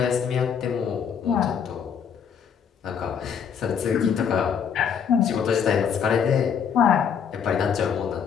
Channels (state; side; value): quieter; right; 7.4 dB